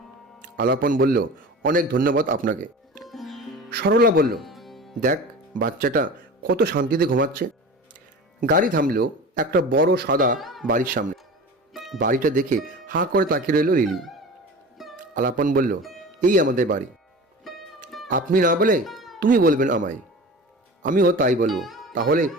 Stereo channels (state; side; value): normal; both; correlation 0.35